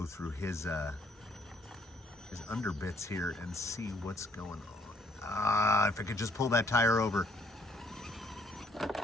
through his underbits here and see what's going on. If I could just pull that tire over.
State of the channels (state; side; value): normal; both; correlation 0.65